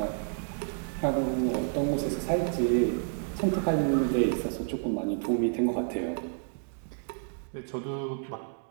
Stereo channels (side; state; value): left; silent; 58 dB below the other